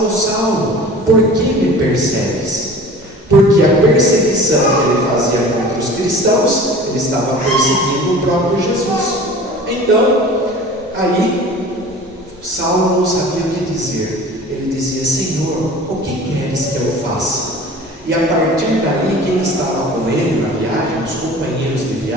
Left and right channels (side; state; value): both; normal; correlation 0.42